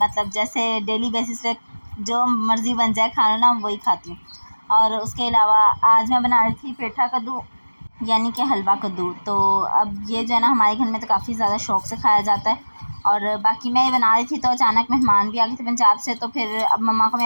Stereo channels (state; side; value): inverted; both; correlation -1.00